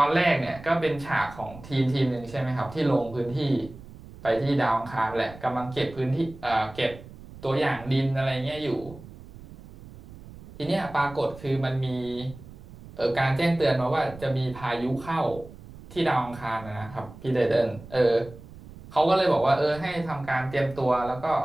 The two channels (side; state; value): right; noise; rumble, 17 dB below the sound